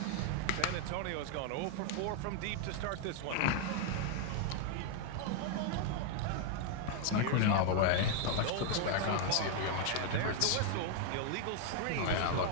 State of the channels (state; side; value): different; both; correlation 0.00